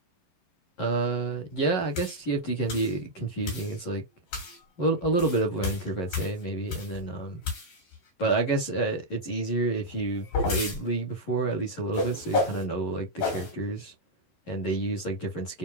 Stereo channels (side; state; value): right; late; 11 ms